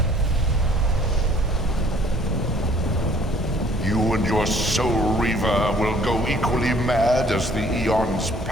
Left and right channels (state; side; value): normal; both; correlation 0.58